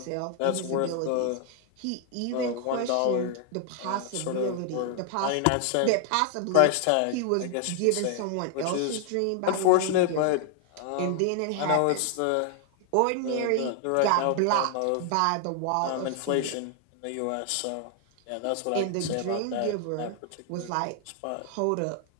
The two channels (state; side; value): different; both; correlation 0.00